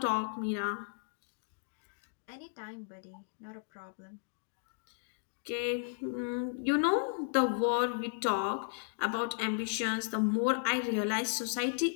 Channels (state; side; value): silent; right; digital silence